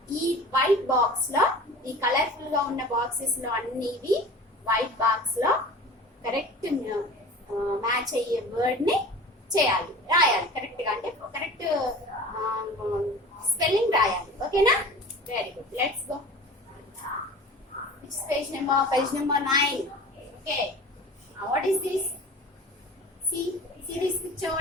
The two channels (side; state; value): both; normal; correlation 0.39